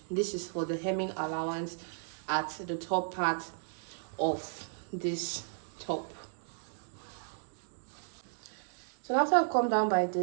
This is for the hemming allowance at the top part of this top. So after I've come down by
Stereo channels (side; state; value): left; silent; digital silence